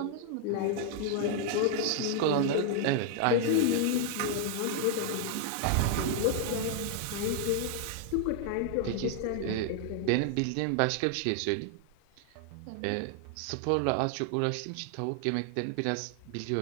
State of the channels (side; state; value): both; different; correlation 0.00